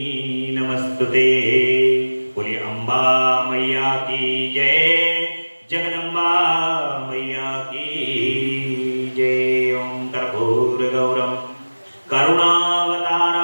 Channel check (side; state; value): both; inverted; correlation -1.00